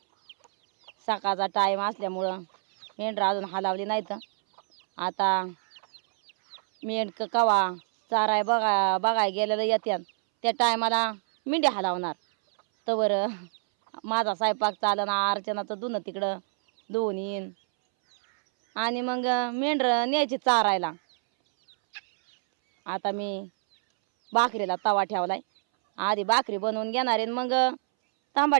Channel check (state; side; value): silent; left; 60 dB below the other